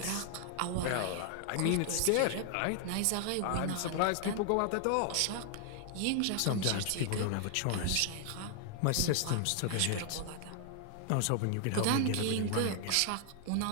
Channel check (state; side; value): different; both; correlation 0.00